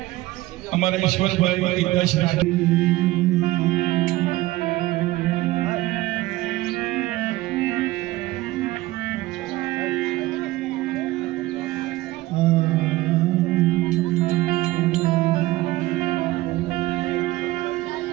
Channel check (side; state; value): left; quieter; 18.0 dB